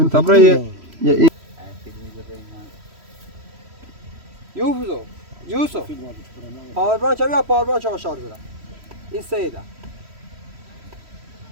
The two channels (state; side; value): late; left; 3.1 ms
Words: tabraya ya Yusuf Yusuf power branch abi power branch aşağı dura inside